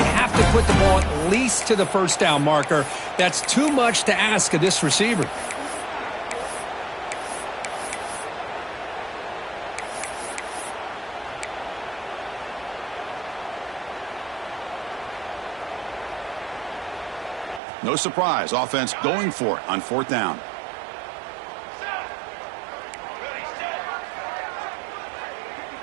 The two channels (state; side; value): drops out; left; at 17.6 s